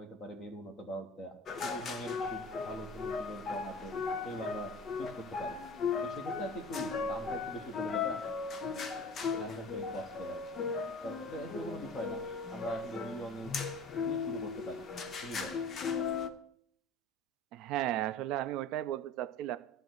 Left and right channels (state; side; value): normal; both; correlation 0.39